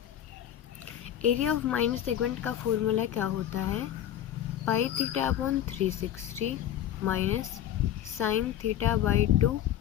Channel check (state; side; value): quieter; right; 11.1 dB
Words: Area of minor segment का फॉर्मूला क्या होता है, pi theta upon 360 minus sine theta by 2